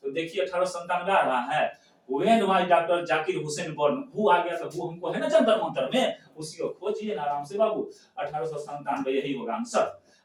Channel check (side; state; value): both; identical; correlation 1.00